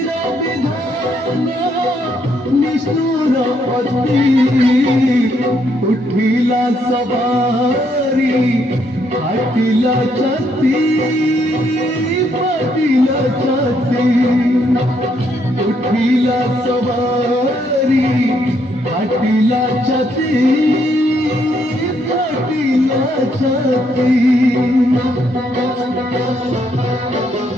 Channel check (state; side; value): normal; both; correlation 0.73